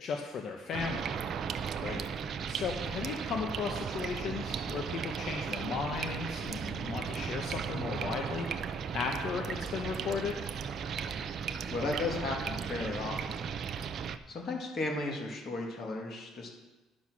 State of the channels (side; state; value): both; normal; correlation 0.63